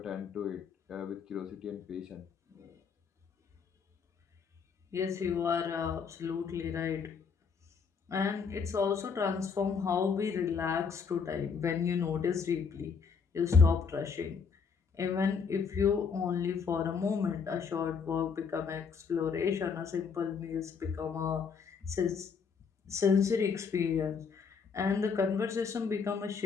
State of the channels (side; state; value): right; quieter; 5.9 dB